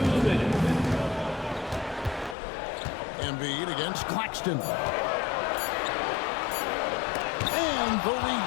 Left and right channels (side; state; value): right; drops out; at 2.4 s